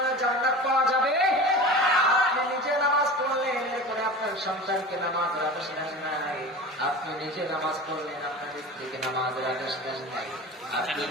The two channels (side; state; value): both; normal; correlation 0.34